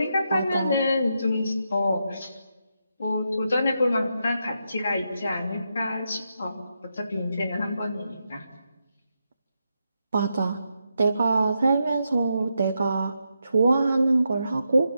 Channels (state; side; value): inverted; both; correlation -0.84